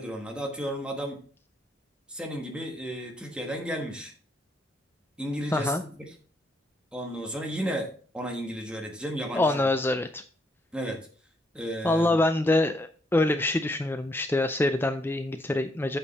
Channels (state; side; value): normal; both; correlation 0.73